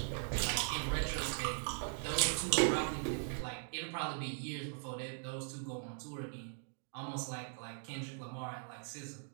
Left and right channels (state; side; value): silent; left; digital silence